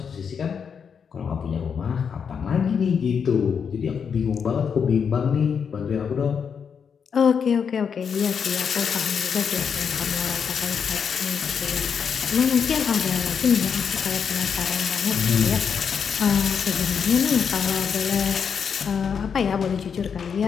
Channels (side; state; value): right; quieter; 6.7 dB